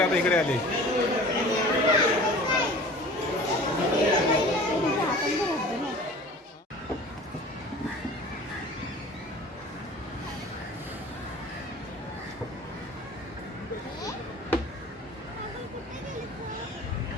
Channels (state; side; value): normal; both; correlation 0.43